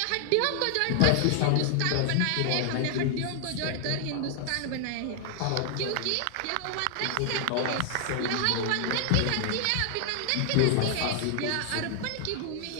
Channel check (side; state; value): both; different; correlation 0.00